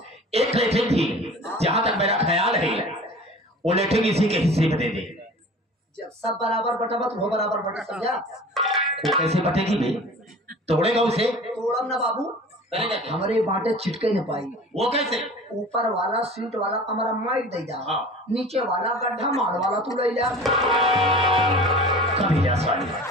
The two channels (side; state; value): both; normal; correlation 0.40